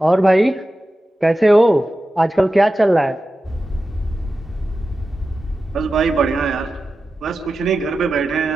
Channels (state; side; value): normal; both; correlation 0.93